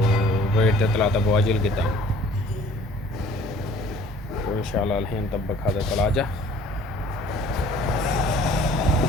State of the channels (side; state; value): both; normal; correlation 0.53